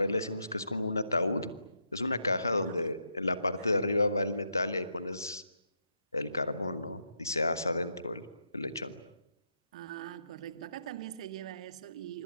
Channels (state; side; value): inverted; both; correlation -0.81